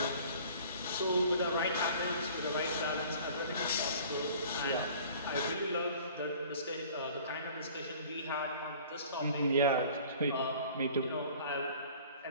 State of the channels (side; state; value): both; inverted; correlation -0.48